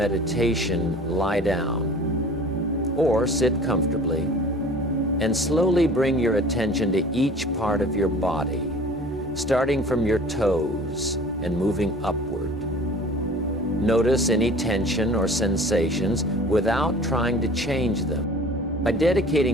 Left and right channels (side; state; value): both; normal; correlation 0.44